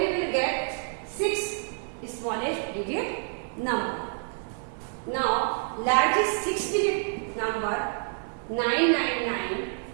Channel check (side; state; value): left; silent; 59 dB below the other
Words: we will get 6 smallest digit number. Now largest 6 digit number 999.